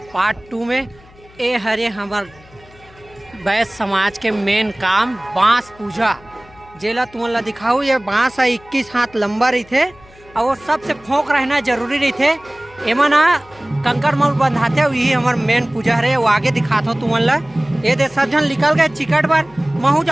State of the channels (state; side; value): noise; left; hum, 25 dB below the sound